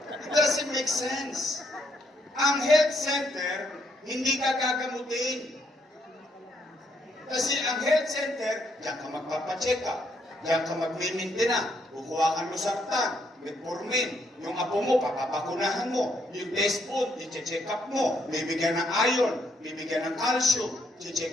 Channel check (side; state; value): both; normal; correlation 0.73